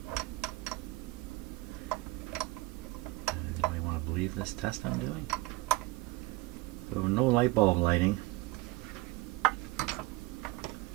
Believe this test I'm doing. So no light bulb lighting. I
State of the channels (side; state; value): left; quieter; 20.1 dB